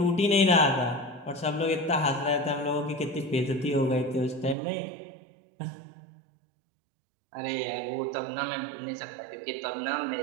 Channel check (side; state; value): left; drops out; at 4.5 s